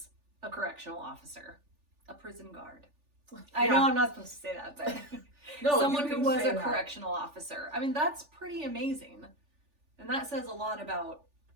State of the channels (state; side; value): late; left; 3.4 ms